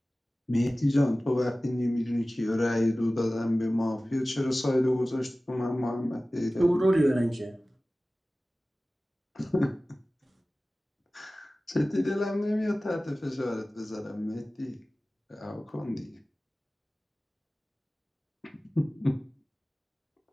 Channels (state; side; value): normal; both; correlation 0.97